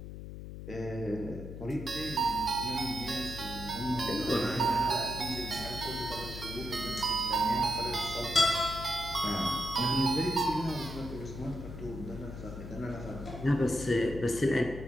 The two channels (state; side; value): noise; left; hum, 10 dB below the sound